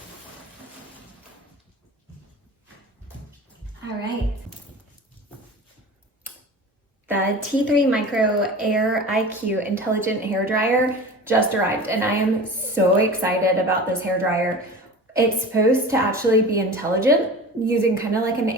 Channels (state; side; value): normal; both; correlation 0.35